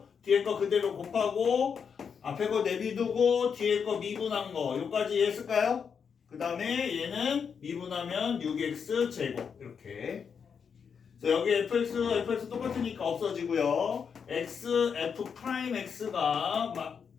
뒤에 거 그대로 곱하고 앞에 거 내비두고 뒤에 거 미분한 거 요까지 이해했을까요? 그 다음에 얘는 미분하면 6x 제곱 이렇게. 그래서 여기 fx 똑같으니까 없어지고요. f'x가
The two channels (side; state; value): right; quieter; 6.6 dB